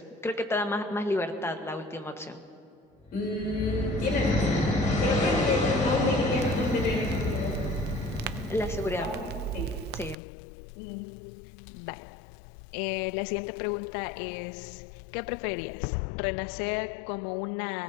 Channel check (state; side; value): drops out; right; at 10.2 s